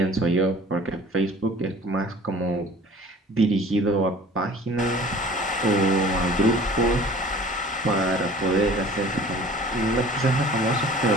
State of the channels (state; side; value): normal; both; correlation 0.46